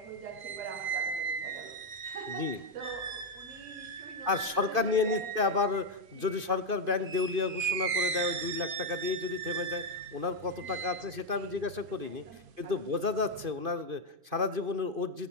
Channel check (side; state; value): left; late; 2.5 ms